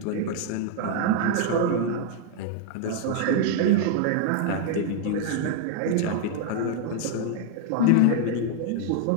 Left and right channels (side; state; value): both; different; correlation 0.00